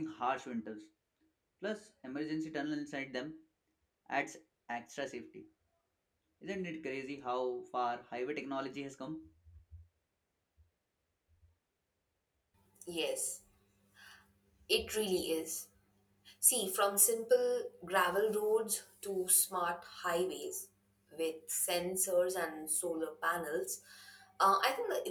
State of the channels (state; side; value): identical; both; correlation 1.00